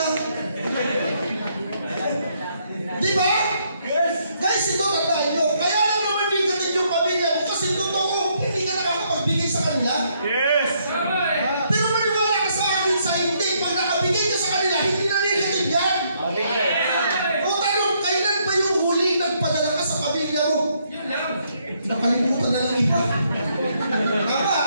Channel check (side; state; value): both; inverted; correlation -0.72